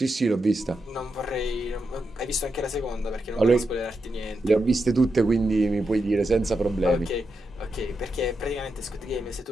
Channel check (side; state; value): both; normal; correlation 0.86